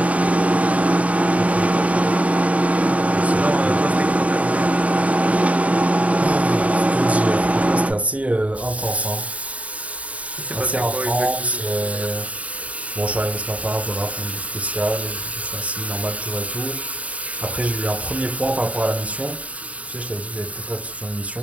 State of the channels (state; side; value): late; left; 0.068 ms